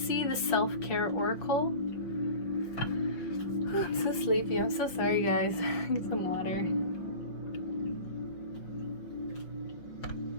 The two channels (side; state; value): right; late; 5.6 ms